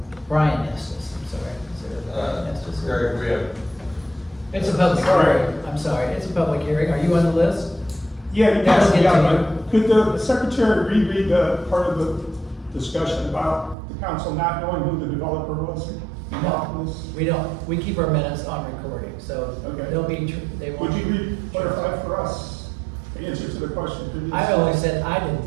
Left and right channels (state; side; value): drops out; left; at 13.8 s